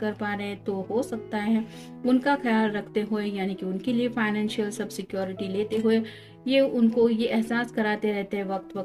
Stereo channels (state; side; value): identical; both; correlation 1.00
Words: पा रहे हैं तो हो सकता है उनका ख्याल रखते हुए, यानी कि उनके लिए फाइनेंशियल सब सिक्योरिटी लेते हुए ये उनको ये एहसास कराते रहते हैं वक्त